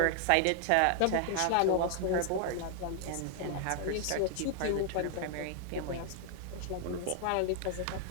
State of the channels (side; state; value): both; different; correlation 0.00